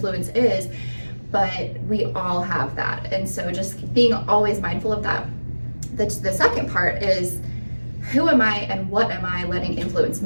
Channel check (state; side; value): inverted; both; correlation -1.00